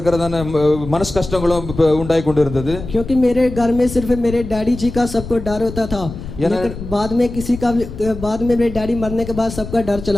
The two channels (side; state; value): left; noise; rumble, 10 dB below the sound